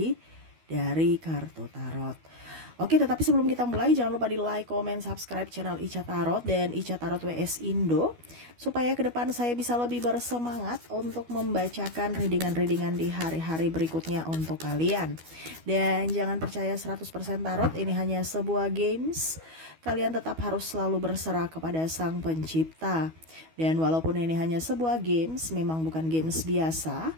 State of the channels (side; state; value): left; late; 12 ms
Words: dari kartu tarot. Oke, tetapi sebelum kita mulai, jangan lupa di like, comment, subscribe channel Ica Tarot dan Ica Tarot WS Indo, supaya ke depan saya bisa lebih bersemangat untuk membacakan readingan-readingan di hari-hari berikutnya untuk kalian. Dan jangan percaya 100% tarot, ini hanya sebuah games. Kalian tetap harus selalu berserah kepada Sang Pencipta. Dan walaupun ini hanya sebuah games, memang bukan games biasa,